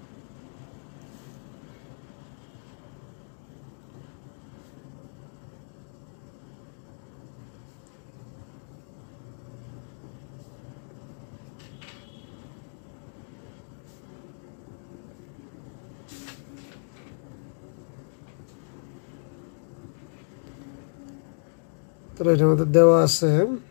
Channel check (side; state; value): right; silent; digital silence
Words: তাহলে এটা আমাদের দেওয়া আছে।